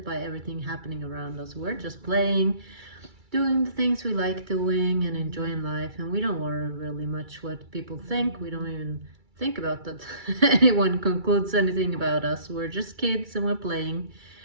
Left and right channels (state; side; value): late; left; 2.3 ms